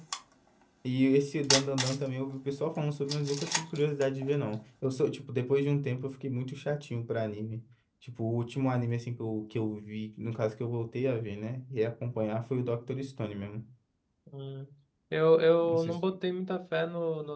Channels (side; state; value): both; identical; correlation 1.00